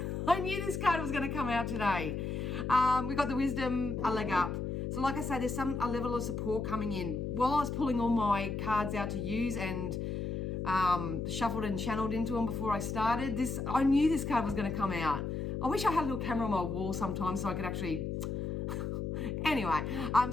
knew this card was going to come out today. We got the wisdom, a leg up. So like I say, there's a level of support coming in. While I was pulling all my cards out to use and shuffled and channeled into them before I started, I knew this card was going to come out. I wish I had a little camera on my wall sometimes so I could actually... Anyway,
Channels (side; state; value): left; noise; hum, 3 dB below the sound